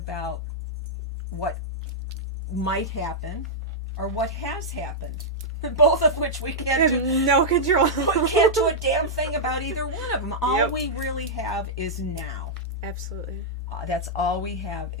what might happen or what has happened. Both of which we can't do. No control. We can't do a damn thing about either one of them. All we really have is now. Absolutely. That's all we have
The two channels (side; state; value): both; normal; correlation -0.08